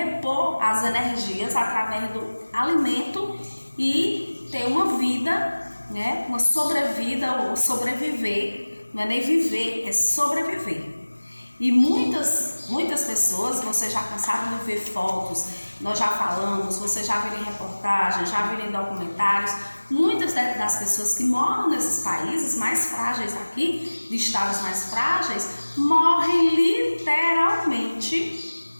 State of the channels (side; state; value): both; inverted; correlation -1.00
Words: as energias através do alimento e ter uma vida, né, uma sobrevida ou sobreviver, não é nem viver, é sobreviver. E muitas pessoas, vocês já cansaram de ver fotos, nós já falamos, vocês já viram em reportagens, já viram em documentários, muitas das pessoas que moram nesses países mais frágeis aqui, de estados mais frágeis, morrem literalmente,